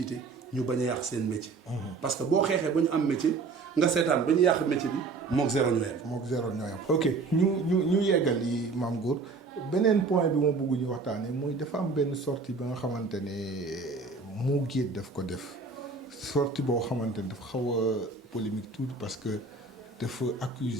ñu bañ a yàq seen métier. parce que boo xeexee ba ñu am métier nga seetaan ba ñu yàq métier bi mook zéro ñoo yem. mook zéro ñoo yem. ok ñu yeggal yi Mame Goor beneen point bi ma bëgg ñu waxtaanee mooy dafa am benn sortie ba nga xamante ne Mo Gates daf ko def sortie boo xamante ne dafa xaw a polémique tuuti parce que dafa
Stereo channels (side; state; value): left; quieter; 4.2 dB